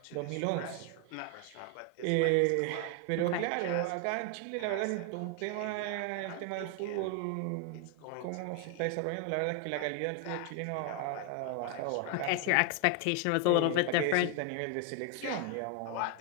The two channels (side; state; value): both; different; correlation 0.01